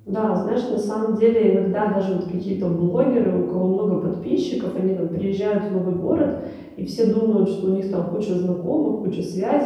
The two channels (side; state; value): both; identical; correlation 1.00